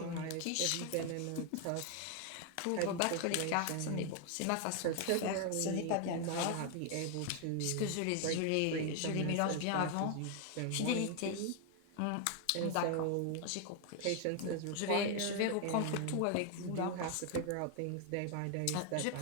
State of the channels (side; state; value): both; different; correlation 0.00